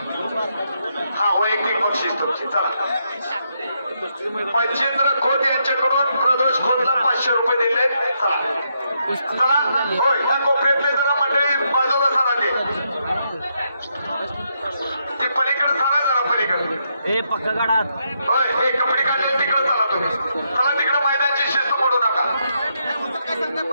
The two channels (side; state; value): both; inverted; correlation -0.79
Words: हा वैयक्तिक बक्षीस तुमची चला मच्छिंद्र खोत यांच्याकडून प्रदेश खोतला 500 रुपये दिले चला चला होय या कोपऱ्यातले जरा मंडळी बाजूला सरा ते पलीकडे सरा जरा पलीकडे ए पक्का गाडात होय हे कपडे काढले तिकडे चला तुम्ही चला तिकडे मैदानची शिस्त मोडू नका